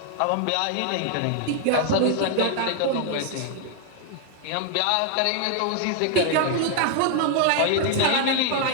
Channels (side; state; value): both; different; correlation 0.00